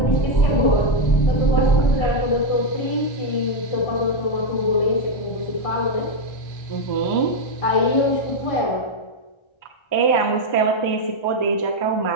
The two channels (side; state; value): right; late; 1.3 ms